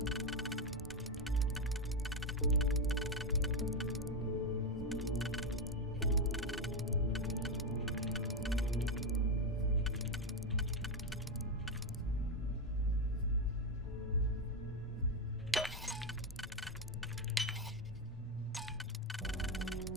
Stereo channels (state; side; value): normal; both; correlation 0.08